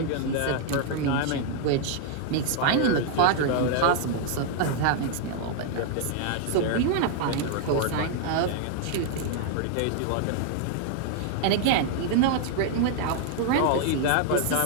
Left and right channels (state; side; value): different; both; correlation 0.00